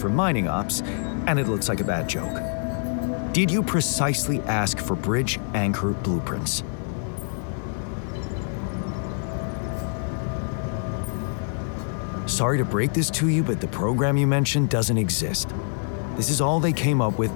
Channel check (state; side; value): silent; right; digital silence